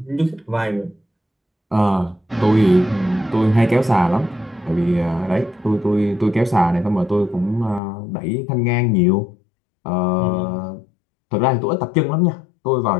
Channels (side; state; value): right; drops out; at 7.8 s